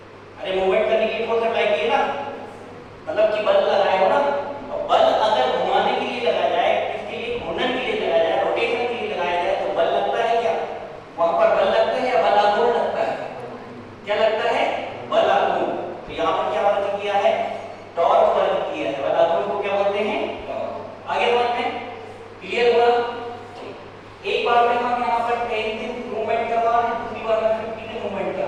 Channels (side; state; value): both; identical; correlation 1.00